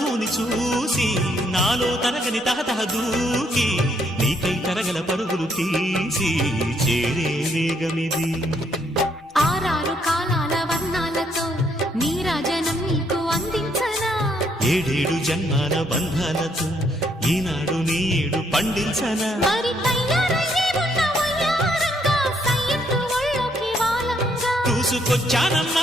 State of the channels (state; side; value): normal; both; correlation 0.71